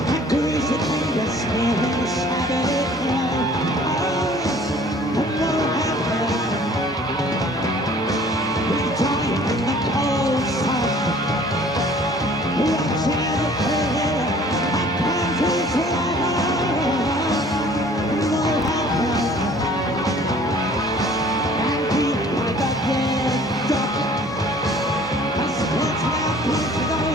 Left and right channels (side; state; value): both; normal; correlation 0.52